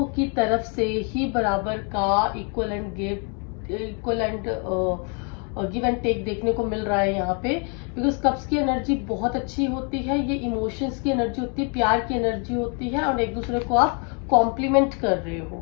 की तरफ से ही बराबर का equal and give and take देखने को मिल रहा है यहाँ पे। बिकॉज कप्स की एनर्जी बहुत अच्छी होती है, ये इमोशंस की एनर्जी होती है, प्यार की एनर्जी होती है, और एक दूसरे को आप कॉम्प्लीमेंट कर रहे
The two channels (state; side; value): quieter; right; 37.6 dB